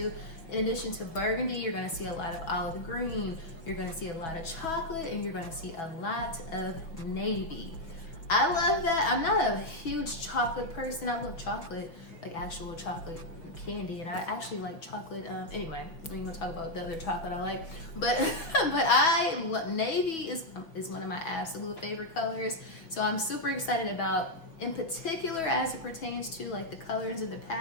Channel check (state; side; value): late; right; 5.9 ms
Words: In addition to burgundy, you're going to see a lot of olive green, you're going to see a lot of chocolate, and you're going to see a lot of navy. I love that. I'm not a huge chocolate person. I love chocolate, like actual chocolate candy, and I actually like chocolate. Anyway, we ain't gonna talk about the other chocolate I like, but navy is one of my absolute favorite colors. So I'm super excited about, in particular, as it pertains to like the colors and the